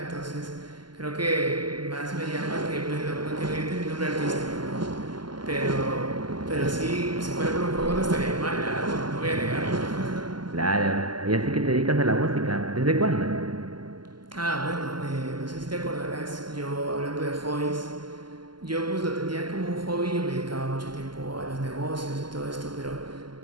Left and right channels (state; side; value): late; left; 0.71 ms